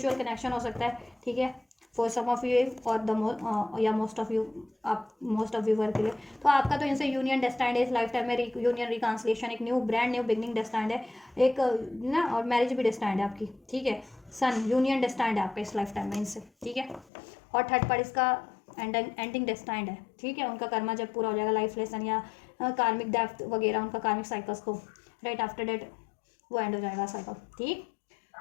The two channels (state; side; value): drops out; right; at 17.1 s